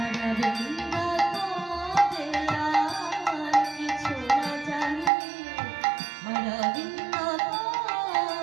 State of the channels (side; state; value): left; drops out; at 5.1 s